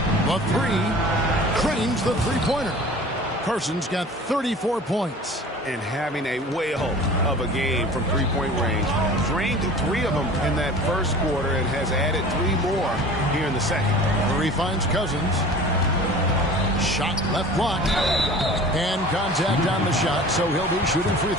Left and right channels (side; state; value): both; normal; correlation 0.42